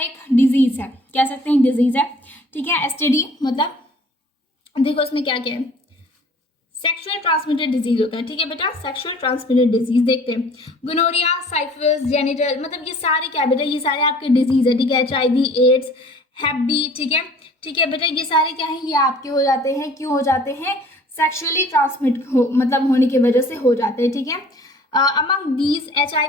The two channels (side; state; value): both; normal; correlation 0.51